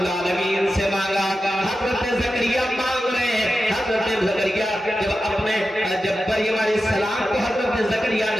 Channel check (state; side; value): normal; both; correlation 0.92